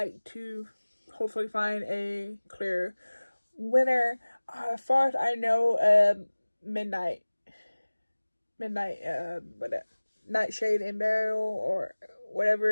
to hopefully find a clear winner. As far as I know, Nightshade and Burial, or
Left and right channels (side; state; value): both; inverted; correlation -1.00